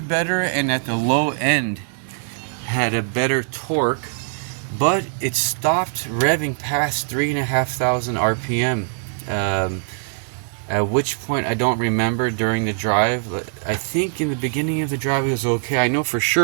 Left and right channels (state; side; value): silent; left; digital silence